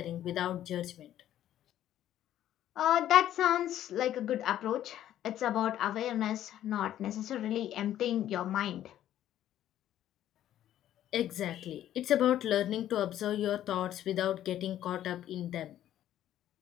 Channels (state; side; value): quieter; right; 11.9 dB